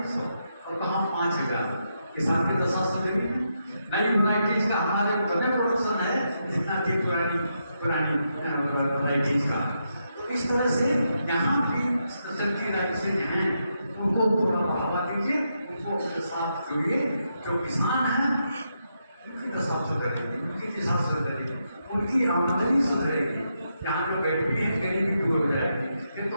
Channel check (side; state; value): both; inverted; correlation -0.82